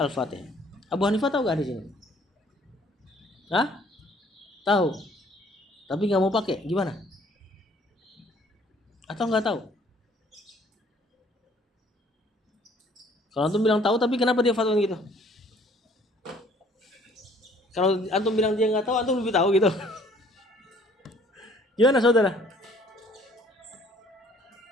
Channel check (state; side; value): normal; both; correlation 0.58